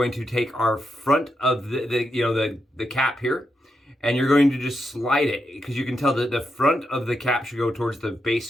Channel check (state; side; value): normal; both; correlation 0.84